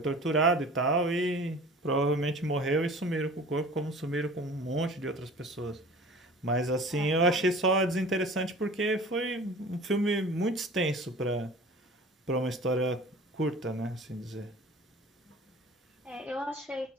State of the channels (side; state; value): both; normal; correlation 0.43